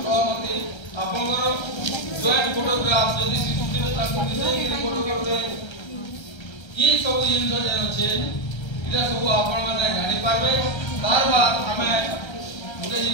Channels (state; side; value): late; right; 1.3 ms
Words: सहमति आपनकर जॉइंट फोटोग्राफ यदि शिशु दिबे तांकर विषय के फोटोग्राफ दे ई सब जिंस जे अछि इला सब आपन माने जानि पाबे तार बाद हमें मुझे